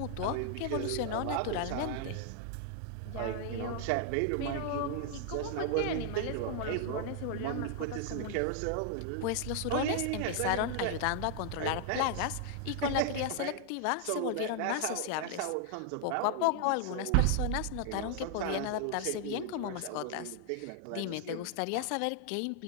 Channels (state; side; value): different; both; correlation 0.00